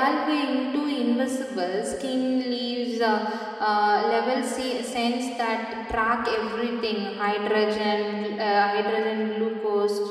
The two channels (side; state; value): both; identical; correlation 1.00